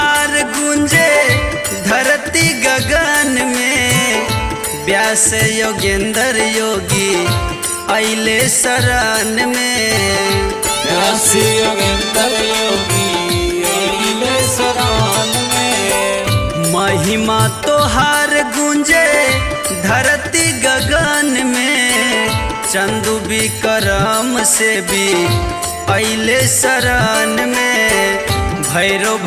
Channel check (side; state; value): both; identical; correlation 1.00